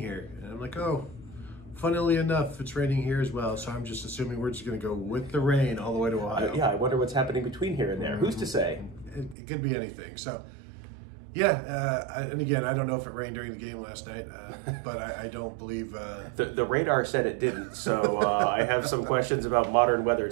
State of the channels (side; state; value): left; drops out; at 9.3 s